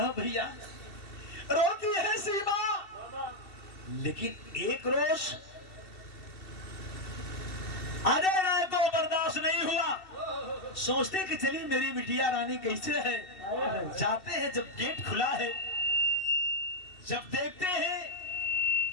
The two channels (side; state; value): right; late; 2.7 ms